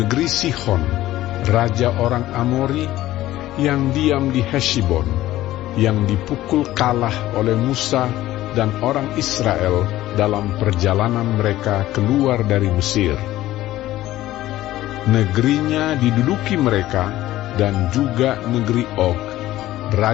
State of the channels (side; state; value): right; quieter; 15.2 dB